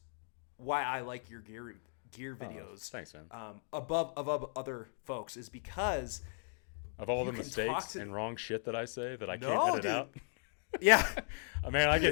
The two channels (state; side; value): silent; right; 53 dB below the other